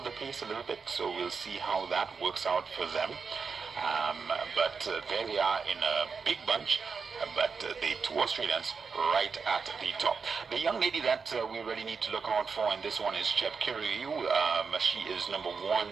pace a little bit, so we'll see how that works out for them. But there they are in a big bunch, but the two Australians right at the top. The young lady that we really need to look out for in this one is Chepkirui. She is number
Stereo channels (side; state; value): left; quieter; 5.3 dB